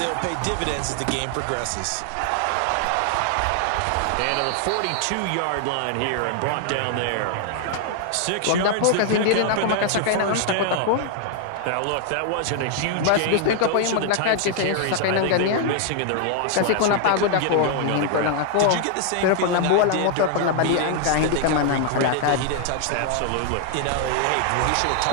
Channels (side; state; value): both; different; correlation 0.00